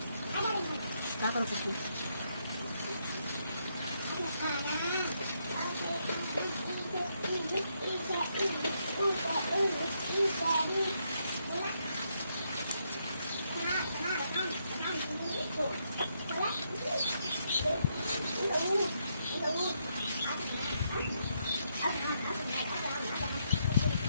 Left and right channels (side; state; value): both; inverted; correlation -0.77